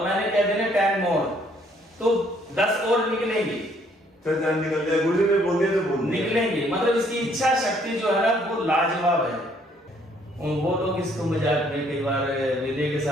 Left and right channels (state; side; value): normal; both; correlation 0.65